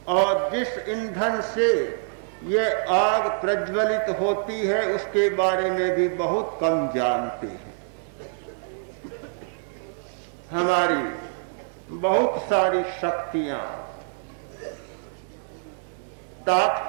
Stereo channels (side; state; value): left; silent; 61 dB below the other